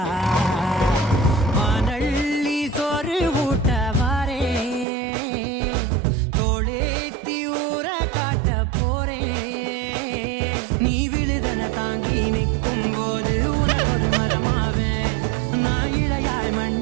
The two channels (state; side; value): drops out; left; at 4.9 s